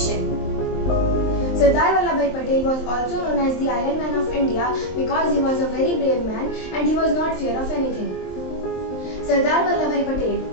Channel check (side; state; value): right; late; 23 ms